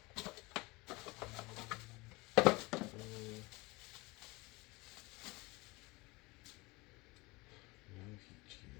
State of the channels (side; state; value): right; quieter; 24.0 dB